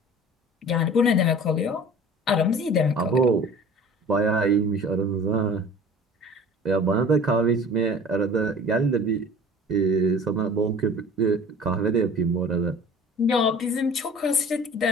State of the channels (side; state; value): both; normal; correlation 0.43